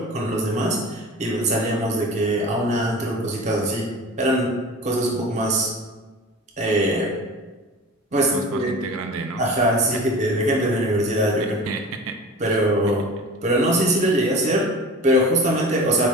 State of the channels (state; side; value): normal; both; correlation 0.36